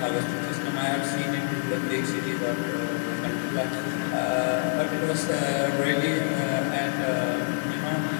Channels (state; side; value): silent; right; digital silence